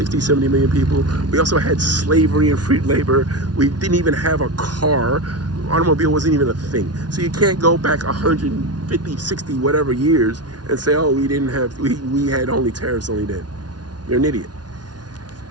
70 million people. We also had slavery and free labor. We didn't even have a car. Automobile wasn't even a thing. So you can't go back 150, 60, whatever years and say, oh, we had only tariffs only then. You're an idiot.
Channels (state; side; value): late; left; 0.69 ms